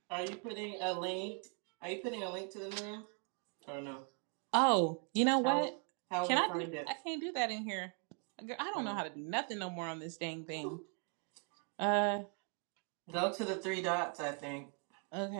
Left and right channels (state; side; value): quieter; left; 39.7 dB